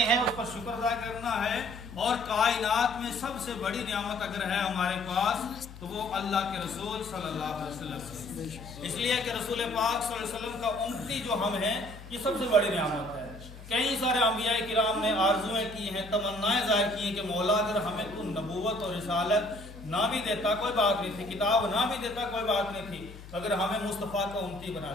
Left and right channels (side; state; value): left; noise; hum, 16 dB below the sound